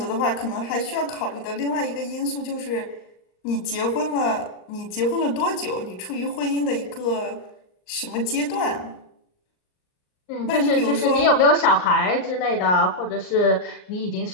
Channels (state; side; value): late; right; 39 ms